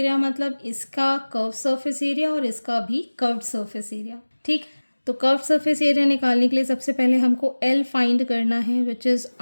मतलब इसका कर्व सरफेस एरिया और इसका भी कर्व्ड सरफेस एरिया. ठीक. तो कर्व सरफेस एरिया निकालने के लिए सबसे पहले हमको L फाइंड करना है, which is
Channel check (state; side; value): inverted; both; correlation -1.00